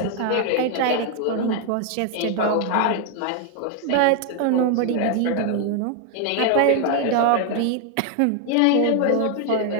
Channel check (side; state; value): both; different; correlation 0.00